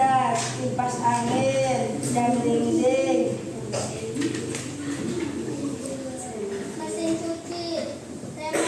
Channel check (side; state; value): both; identical; correlation 1.00